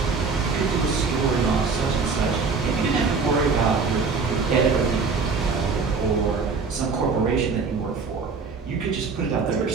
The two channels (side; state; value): left; quieter; 4.7 dB